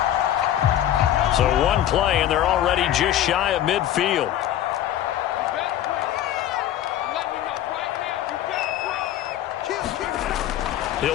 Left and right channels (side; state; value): right; quieter; 11.8 dB